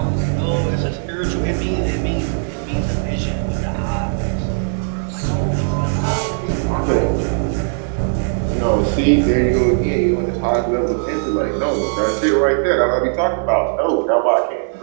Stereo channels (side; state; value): left; silent; digital silence